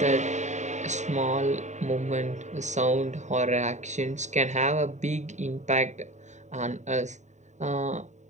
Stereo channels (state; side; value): late; left; 0.34 ms